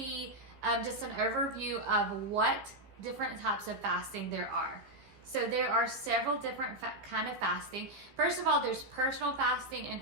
just an overview of what different types of fasting there are. So there are several different kind of fasting. First of all, there's personal fasting and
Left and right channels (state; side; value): late; left; 15 ms